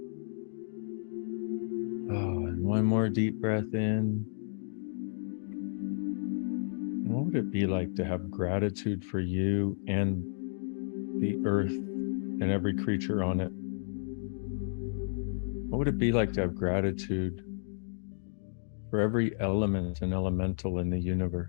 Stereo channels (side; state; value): right; silent; digital silence